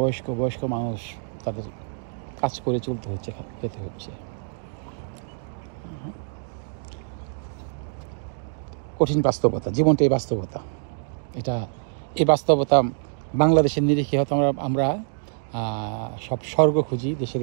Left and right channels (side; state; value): left; silent; digital silence